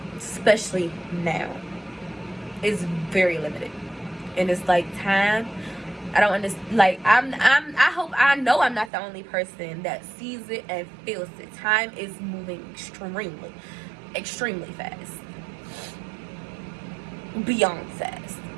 Especially now. It's very limited. And it's like time I don't understand. Like, I know I'm not the only person that sees it and feels it. Time is moving extremely fast. Beyond fast.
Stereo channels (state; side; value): drops out; left; at 8.9 s